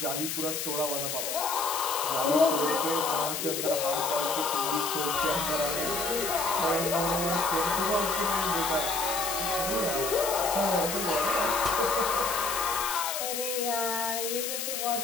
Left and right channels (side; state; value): left; noise; hiss, 3 dB below the sound